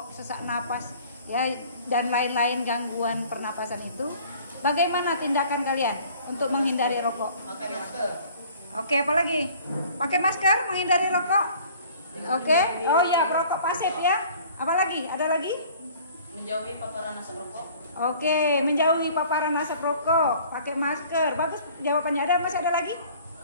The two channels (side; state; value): both; inverted; correlation -0.51